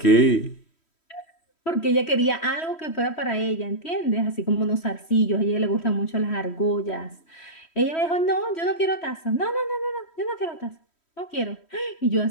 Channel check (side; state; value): right; late; 3.1 ms